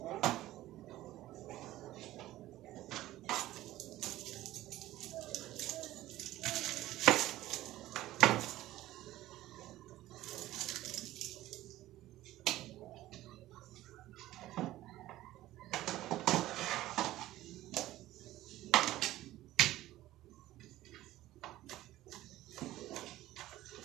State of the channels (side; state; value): left; quieter; 15.5 dB